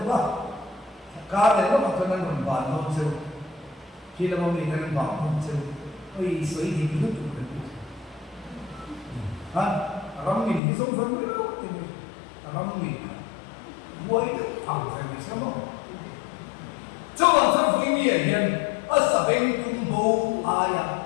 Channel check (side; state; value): right; drops out; at 10.6 s